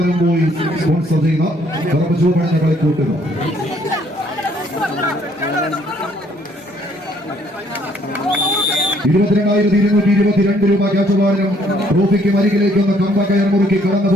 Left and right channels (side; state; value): both; normal; correlation 0.64